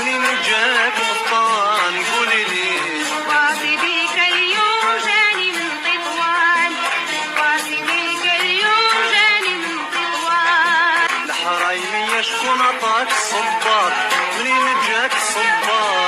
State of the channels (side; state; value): both; identical; correlation 1.00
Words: جاك القفطان قولي لي. باصي بيك اليوم جاني من تطوان، باصي بيك اليوم جاني من تطوان. الحرايمية شكون عطاك الصباط؟ منين جاك